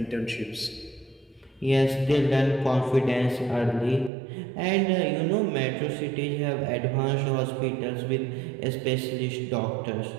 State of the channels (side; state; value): left; drops out; at 4.1 s